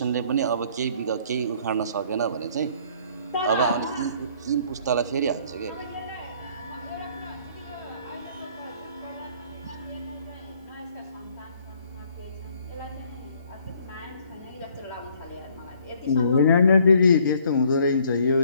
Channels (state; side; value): inverted; both; correlation -0.61